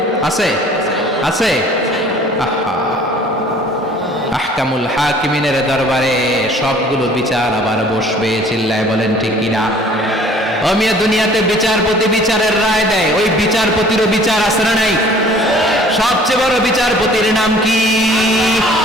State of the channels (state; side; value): normal; both; correlation 0.52